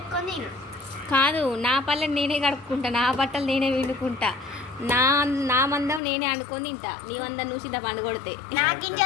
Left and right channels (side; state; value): right; drops out; at 6.0 s